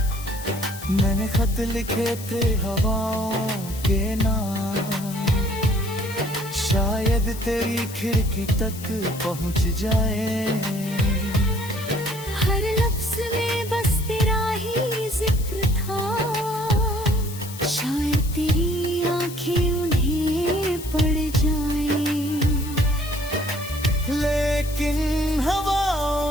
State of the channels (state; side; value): noise; left; hiss, 14 dB below the sound